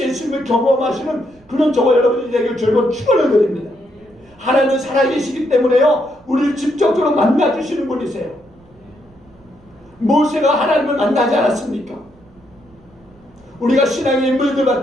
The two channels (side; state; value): right; noise; rumble, 28 dB below the sound